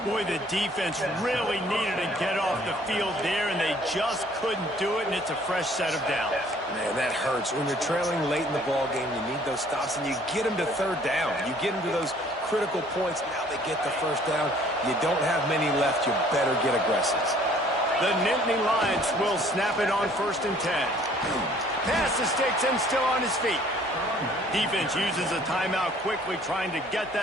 Boy, the defense really needed to get off the field there, and they just couldn't do it, and it's a fresh set of downs. Man, that hurts. When you're trailing late in the ball game, you need those stops, and you get them to third down. You get them to those critical points. Now they get the first down. You don't have many left. You better get aggressive. The Nittany Lions will snap it on 1st and 10. Pass the sticks and still on his feet. Defense uses a timeout quickly, trying to get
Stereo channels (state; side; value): normal; both; correlation 0.57